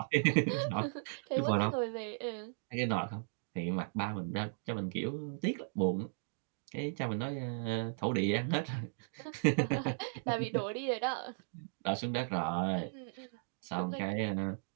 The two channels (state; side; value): silent; left; digital silence